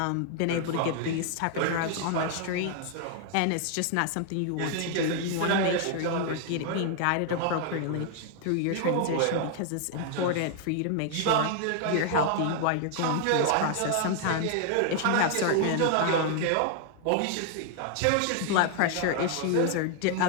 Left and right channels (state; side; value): different; both; correlation 0.00